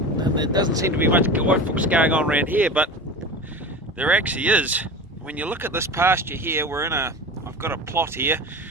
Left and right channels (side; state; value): both; normal; correlation 0.30